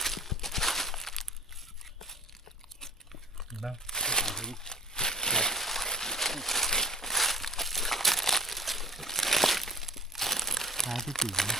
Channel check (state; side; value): normal; both; correlation 0.41